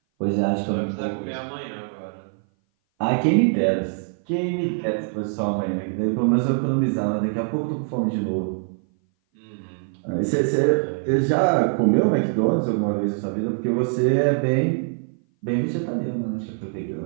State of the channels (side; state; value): left; silent; 58 dB below the other